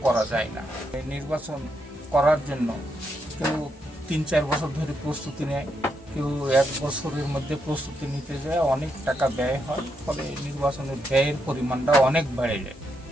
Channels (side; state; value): both; normal; correlation 0.81